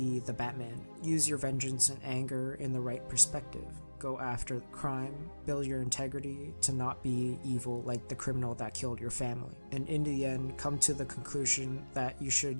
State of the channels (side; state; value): both; inverted; correlation -1.00